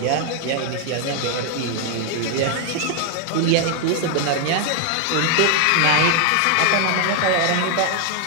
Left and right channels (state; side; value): different; both; correlation 0.00